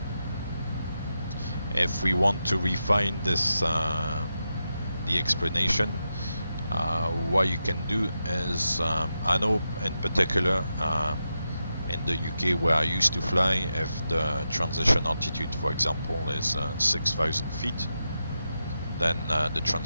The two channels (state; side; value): inverted; both; correlation -0.88